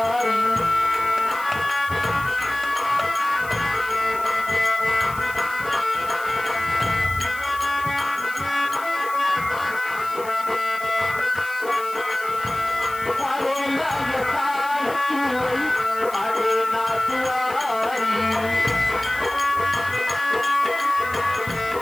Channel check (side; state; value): left; noise; hiss, 17 dB below the sound